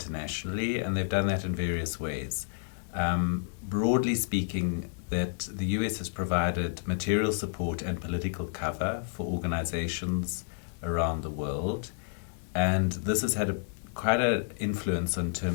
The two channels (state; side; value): silent; right; digital silence